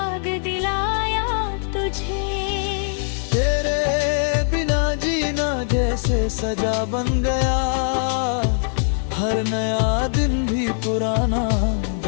दिलाया तुझे। तेरे बिना जीना जैसे सजा बन गया, हर नया दिन भी पुराना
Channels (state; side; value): silent; right; digital silence